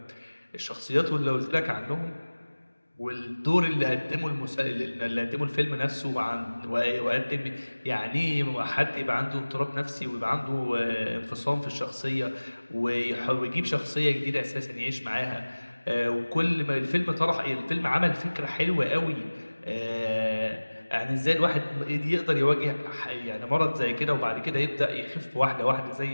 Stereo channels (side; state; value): both; inverted; correlation -1.00